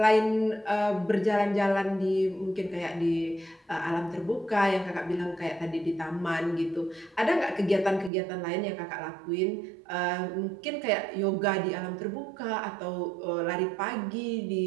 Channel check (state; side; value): drops out; left; at 8.1 s